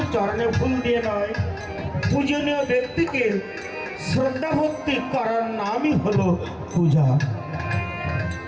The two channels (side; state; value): both; identical; correlation 1.00